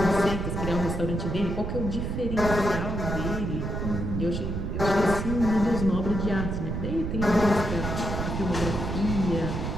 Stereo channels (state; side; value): noise; right; rumble, 3 dB below the sound